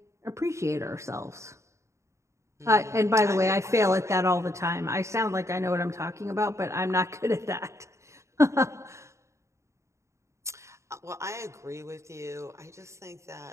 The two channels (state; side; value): late; left; 0.14 ms